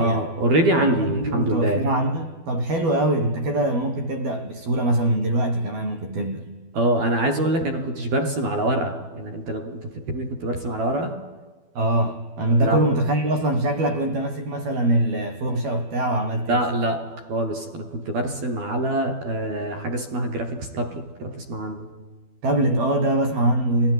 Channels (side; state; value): left; late; 12 ms